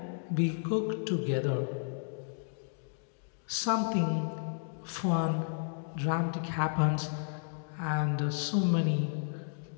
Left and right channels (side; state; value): right; silent; digital silence